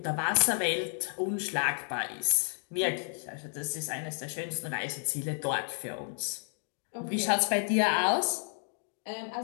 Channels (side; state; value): right; silent; 57 dB below the other